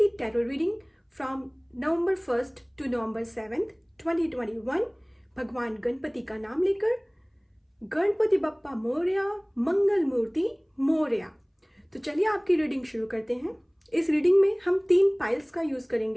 tarot reading from November 1 to November 7, 2021 भगवान गणपति का नाम लेकर। गणपति बप्पा मोरया, मंगल मूर्ति मोरया। तो चलिए आपकी रीडिंग शुरू करते हैं। इस रीडिंग में हम 3 पाइल्स का यूज़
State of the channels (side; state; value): both; identical; correlation 1.00